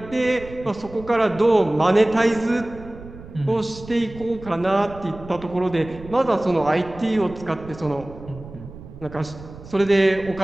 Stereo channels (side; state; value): right; noise; rumble, 16 dB below the sound